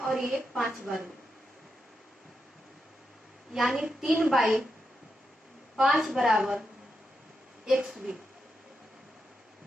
ये 5 बार में, यानी 3 बाई 5 बराबर एक्स बी,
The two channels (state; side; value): normal; both; correlation 0.85